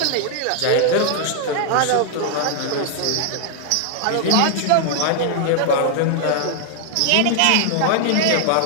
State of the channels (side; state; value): both; different; correlation 0.00